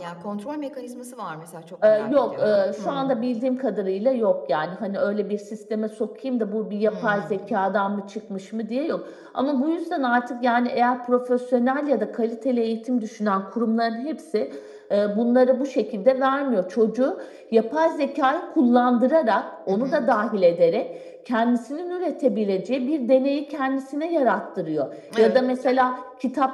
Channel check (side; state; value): both; identical; correlation 1.00